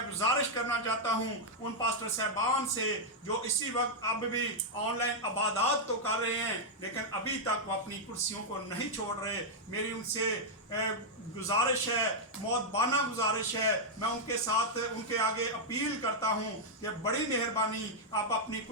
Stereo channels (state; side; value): normal; both; correlation -0.04